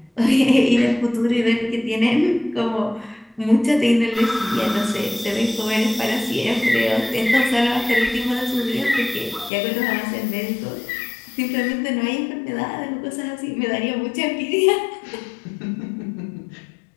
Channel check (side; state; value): right; drops out; at 9.5 s